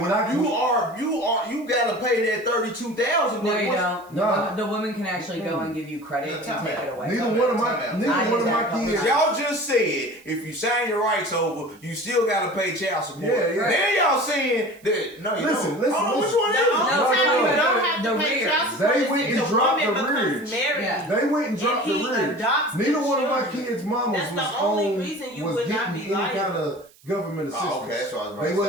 you gotta pay that $32,000. No, you don't. No. The woman can actually go and give you credit and take it away. Neither one of my kids. Y'all just said if you sign your rights over, you still gotta pay child support. Yeah. Then y'all saying that no, you don't. Listen. Which one is it? You don't have to pay child support. They went and dropped the rearage. They went and dropped the rearage. Neither one of my kids' mamas was getting any kind of government assistance. Oh, okay, that's what I was about to say. They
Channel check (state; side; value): noise; right; hiss, 28 dB below the sound